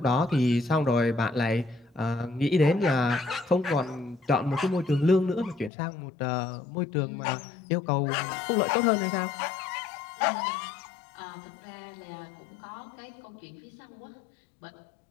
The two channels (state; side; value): drops out; right; at 5.7 s